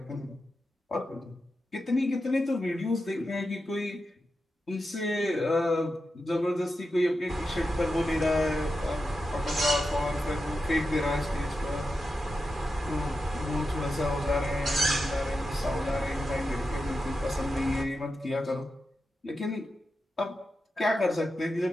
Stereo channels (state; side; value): normal; both; correlation 0.89